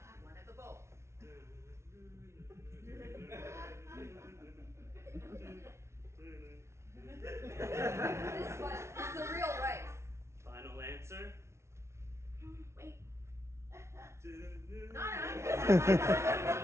one of the bowls. This one is the real rice. Final answer? Wait. Nana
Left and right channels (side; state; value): left; late; 0.13 ms